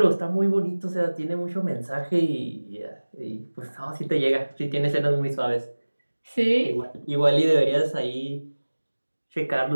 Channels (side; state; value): both; inverted; correlation -1.00